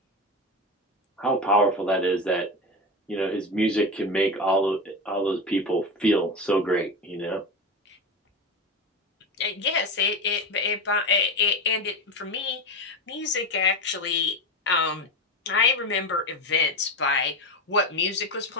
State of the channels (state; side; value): normal; both; correlation 0.20